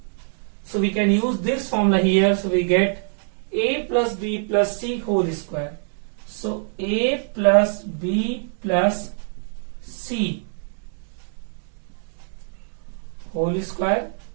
So we can use this formula here. So we get a plus b plus c whole square. So a plus b plus c whole square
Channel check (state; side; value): silent; left; 63 dB below the other